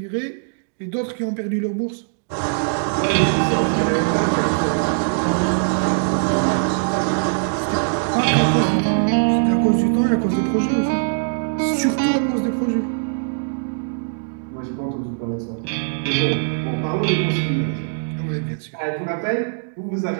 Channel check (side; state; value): left; silent; digital silence